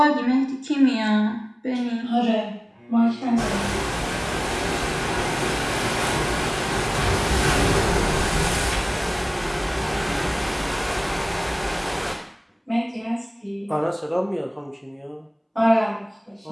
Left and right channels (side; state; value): both; identical; correlation 1.00